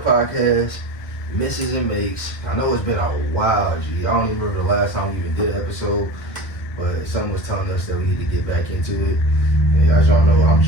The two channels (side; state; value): right; late; 1.9 ms